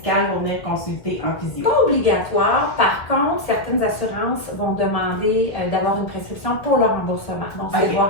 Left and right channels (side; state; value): right; late; 1.6 ms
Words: pour venir consulter un physio? Pas obligatoire. Par contre, certaines assurances vont demander d'avoir une prescription pour le remboursement. Donc, c'est